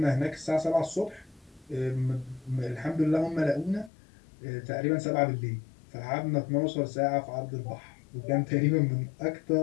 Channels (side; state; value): right; drops out; at 3.9 s